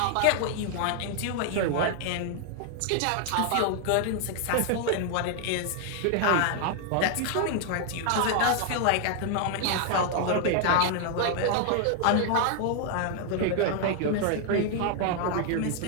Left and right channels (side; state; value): both; different; correlation 0.00